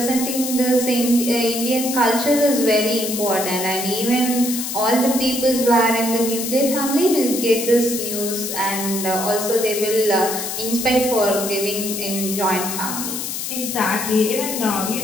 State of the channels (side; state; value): left; noise; hiss, 4 dB below the sound